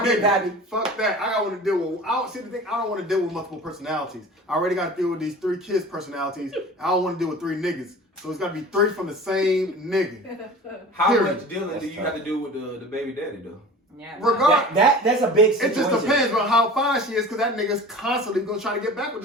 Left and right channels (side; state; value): both; normal; correlation 0.39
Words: be nigga. happy. Fuck that. I don't want to deal with. I don't see the thing. I don't want to deal with multiple personalities. I already got to deal with these 3 kids' personalities. I don't want to deal with 3 niggas. So it's got to be 3 from the same nigga. How Period. much dealing do you have to do with the baby daddy, though? Yeah. Regard. That's a big It situation. just depends on how fine she is, because that nigga's constantly gonna try to get back with